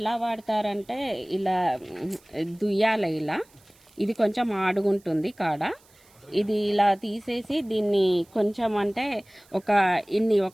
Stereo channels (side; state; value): right; noise; hiss, 30 dB below the sound